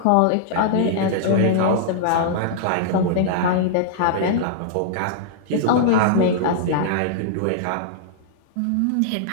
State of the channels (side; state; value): both; different; correlation -0.01